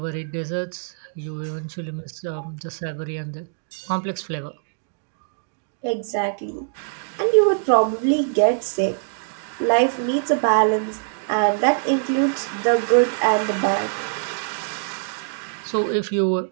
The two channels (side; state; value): left; silent; digital silence